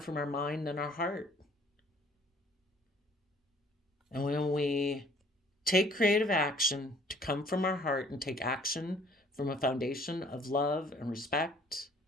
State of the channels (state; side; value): normal; both; correlation 0.57